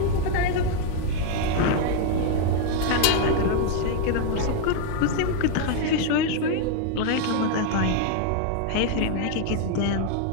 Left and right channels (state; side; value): different; both; correlation 0.00